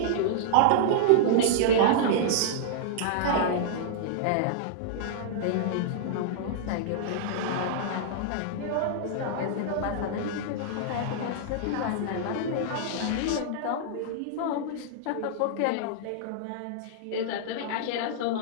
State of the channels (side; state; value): both; different; correlation -0.01